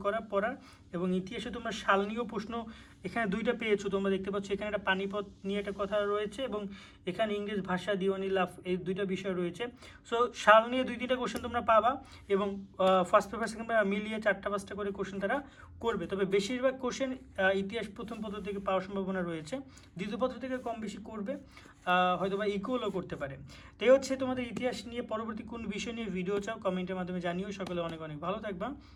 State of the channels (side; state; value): both; identical; correlation 1.00